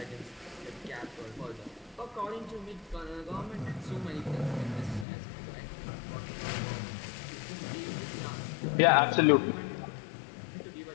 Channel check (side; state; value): right; drops out; at 5.1 s